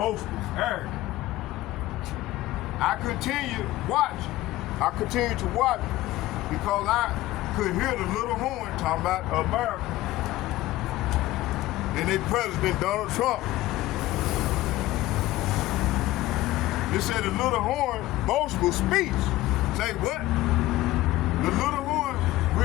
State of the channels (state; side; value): quieter; right; 16.7 dB